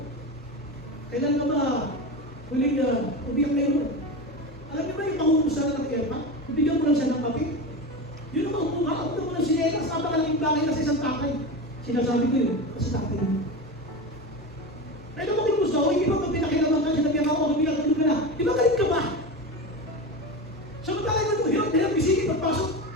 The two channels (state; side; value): normal; both; correlation 0.23